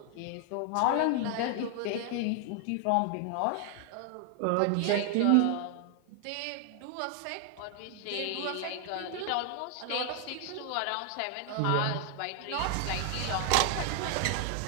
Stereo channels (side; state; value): both; different; correlation 0.00